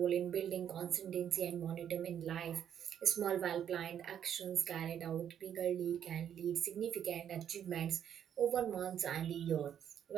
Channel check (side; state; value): left; quieter; 9.3 dB